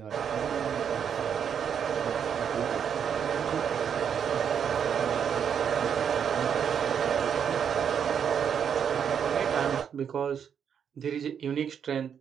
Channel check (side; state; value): left; quieter; 7.8 dB